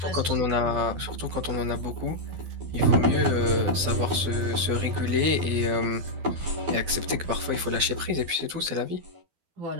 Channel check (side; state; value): left; late; 12 ms